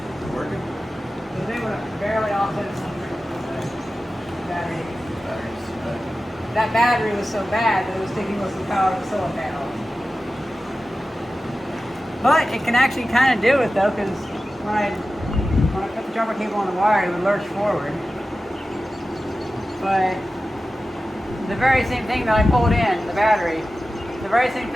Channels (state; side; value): normal; both; correlation 0.94